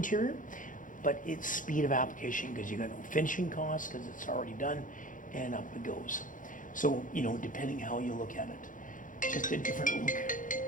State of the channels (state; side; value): late; right; 0.38 ms